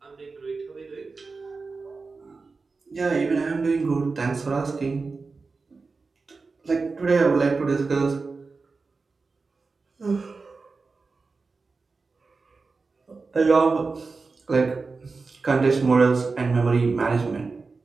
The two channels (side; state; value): left; quieter; 4.2 dB